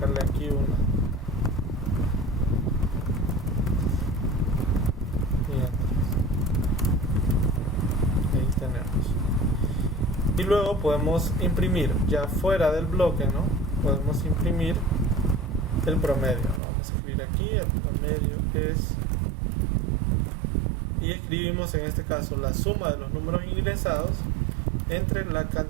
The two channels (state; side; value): drops out; left; at 16.6 s